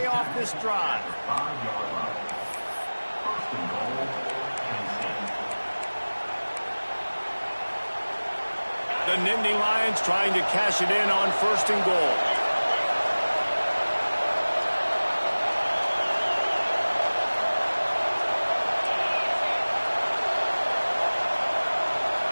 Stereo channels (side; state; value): both; inverted; correlation -1.00